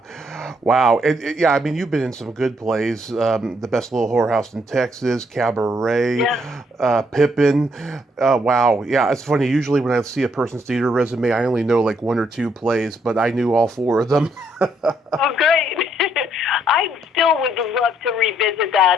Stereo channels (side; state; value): both; normal; correlation 0.72